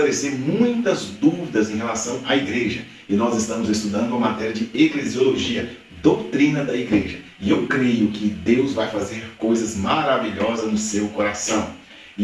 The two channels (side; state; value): both; identical; correlation 1.00